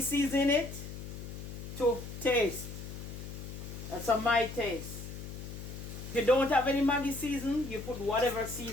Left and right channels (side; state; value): left; noise; hum, 9 dB below the sound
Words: season in it to taste. That's my taste. If you don't have any Maggi season, you put whatever